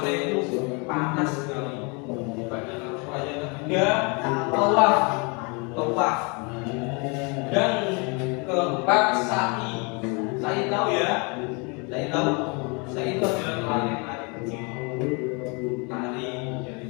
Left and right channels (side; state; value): right; quieter; 31.9 dB